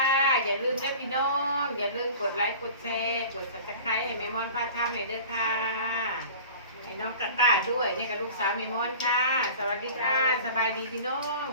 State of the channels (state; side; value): inverted; both; correlation -0.41